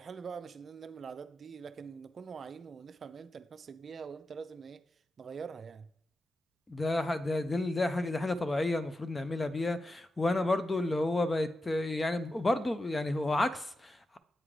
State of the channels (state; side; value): normal; both; correlation 0.90